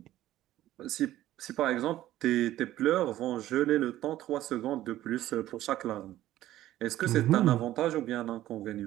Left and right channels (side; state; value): left; quieter; 14.1 dB